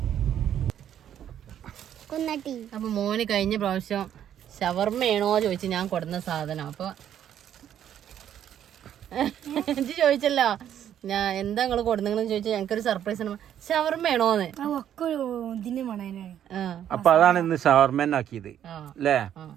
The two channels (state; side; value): quieter; left; 10.2 dB